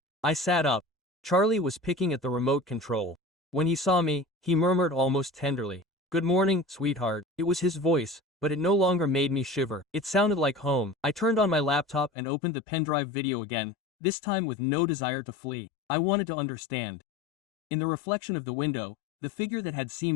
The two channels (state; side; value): drops out; right; at 12.1 s